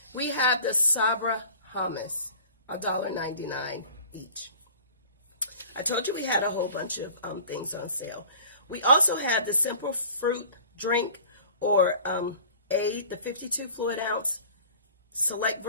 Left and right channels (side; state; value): both; inverted; correlation -0.49